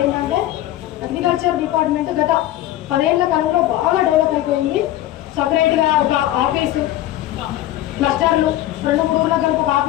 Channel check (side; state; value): right; quieter; 14.1 dB